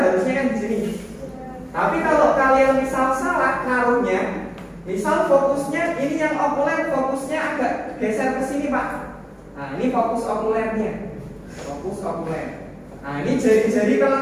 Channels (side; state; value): both; identical; correlation 1.00